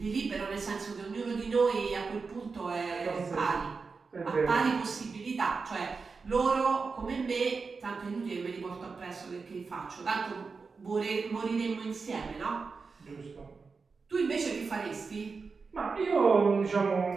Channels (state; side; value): quieter; left; 4.7 dB